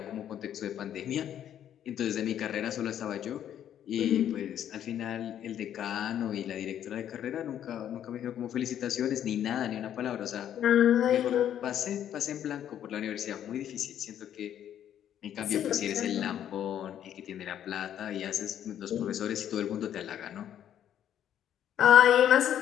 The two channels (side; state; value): right; quieter; 10.3 dB